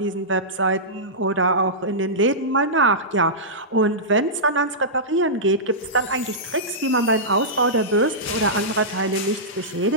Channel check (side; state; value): both; normal; correlation -0.15